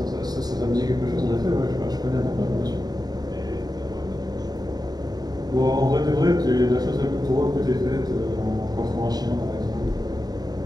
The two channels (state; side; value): late; left; 0.19 ms